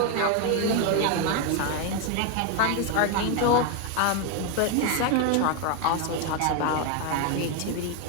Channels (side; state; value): both; different; correlation 0.01